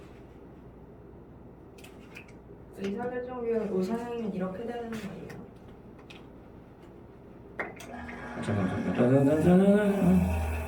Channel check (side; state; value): both; identical; correlation 1.00